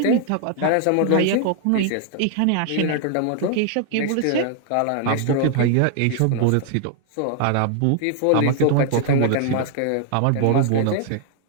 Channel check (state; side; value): different; both; correlation 0.00